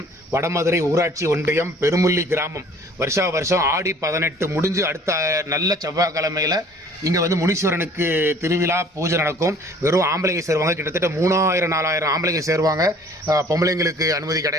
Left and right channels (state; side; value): normal; both; correlation 0.52